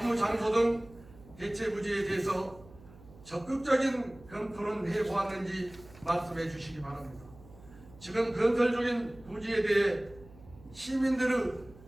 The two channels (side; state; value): right; noise; hum, 21 dB below the sound